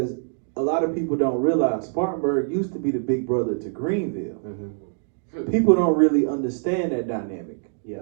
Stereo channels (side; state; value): left; silent; digital silence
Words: a lot of people don't realize Spartanburg used to be the big brother to Greenville. Mm-hmm. People don't really understand that dynamic.